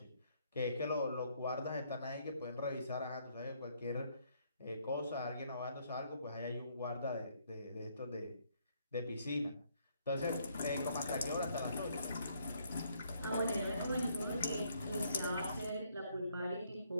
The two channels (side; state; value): both; inverted; correlation -0.69